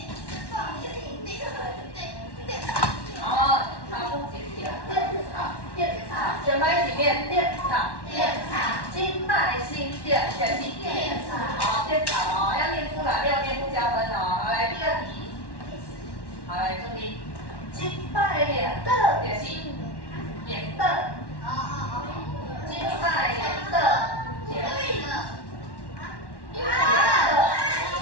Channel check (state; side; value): late; right; 1.1 ms